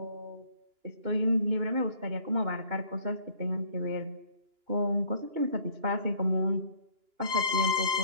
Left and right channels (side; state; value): left; late; 2.9 ms